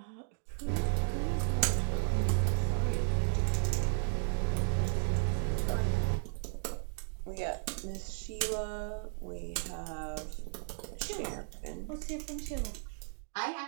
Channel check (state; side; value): silent; left; digital silence